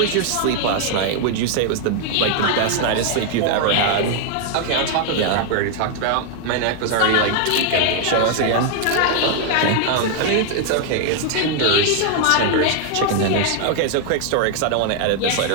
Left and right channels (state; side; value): different; both; correlation 0.00